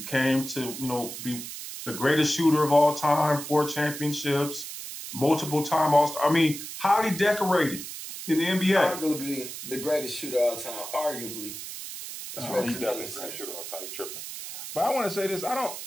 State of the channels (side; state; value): right; noise; hiss, 9 dB below the sound